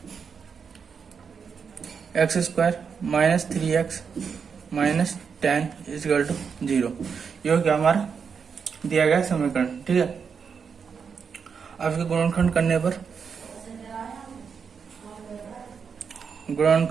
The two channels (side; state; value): left; quieter; 6.2 dB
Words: x square minus 3x minus 10 is equal to 0। ये हो गया हमारा दिया गया समीकरण। ठीक है, अब इसके गुणनखंड करने पर